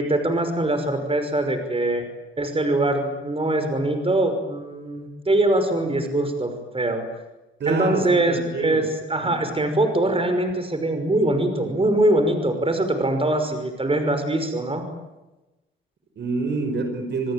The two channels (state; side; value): normal; both; correlation 0.57